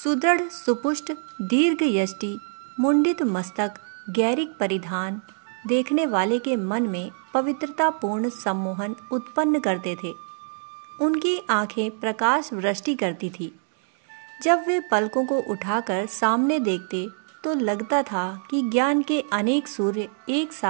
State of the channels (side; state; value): left; silent; 62 dB below the other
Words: सुपुष्ट, दीर्घ यष्टि, मुंडित मस्तक, गैरिक परिधान देखने वाले के मन में पवित्रतापूर्ण सम्मोहन उत्पन्न करते थे। उनकी आंखें प्रकाश वृष्टि करती थी। जब वे पलकों को उठाकर सामने देखते तो लगता था कि ज्ञान के अनेक सूर्य एक